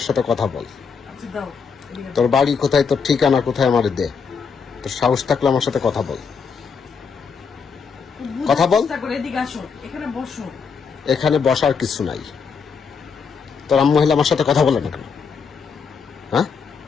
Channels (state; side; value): quieter; right; 5.8 dB